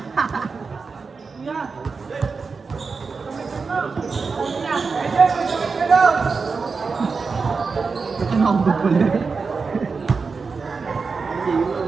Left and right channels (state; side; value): quieter; left; 4.8 dB